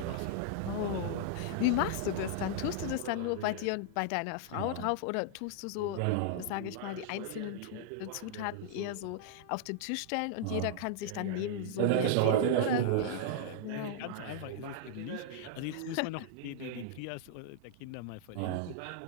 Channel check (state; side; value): different; both; correlation -0.01